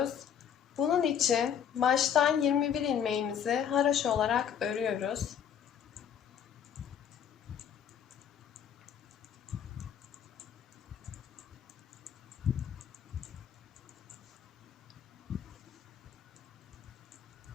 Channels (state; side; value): quieter; right; 8.4 dB